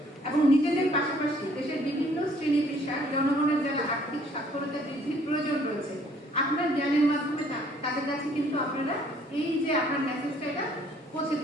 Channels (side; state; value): both; normal; correlation 0.61